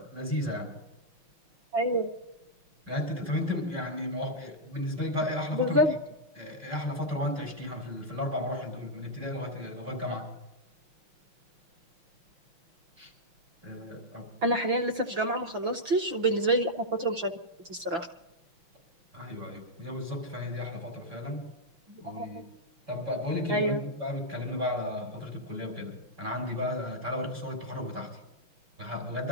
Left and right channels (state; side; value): late; left; 6.0 ms